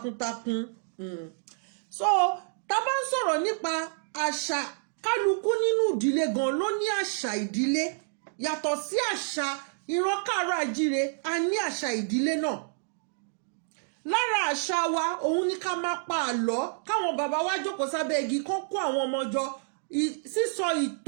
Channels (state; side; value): silent; left; digital silence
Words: so tá bá ń sọ̀rọ̀ nípa àṣà kálukú nínú ìdílé gan ló ní àṣà ìdílé yàtọ̀ sí àṣà ìran Kaaro Ajire a ní àṣà ìdílé náà lára àṣà wa òun ni ká máa pa àlọ́ káwọn bàbá wa jókòó sábẹ́ igi kán kó àwọn ọmọ jọ sísọ